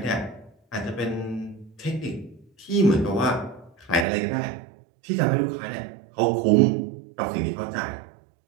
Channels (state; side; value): drops out; left; at 4.0 s